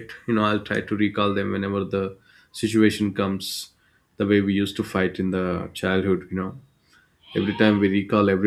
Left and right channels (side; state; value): both; identical; correlation 1.00